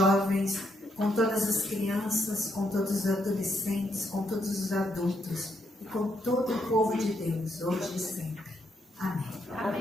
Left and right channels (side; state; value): both; normal; correlation 0.77